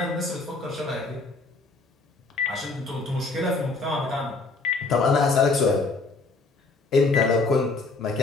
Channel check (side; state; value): right; quieter; 3.7 dB